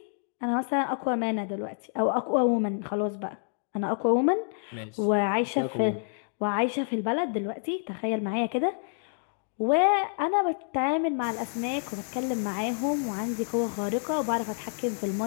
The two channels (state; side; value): silent; right; digital silence